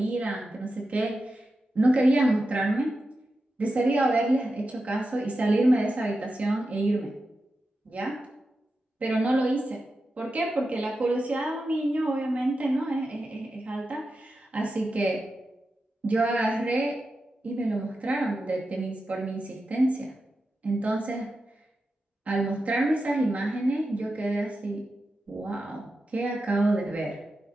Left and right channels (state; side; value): normal; both; correlation 0.90